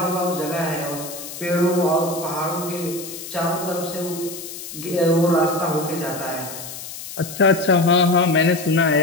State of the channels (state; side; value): noise; left; hiss, 11 dB below the sound